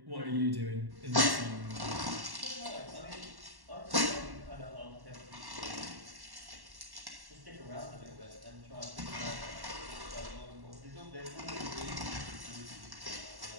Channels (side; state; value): left; late; 1.1 ms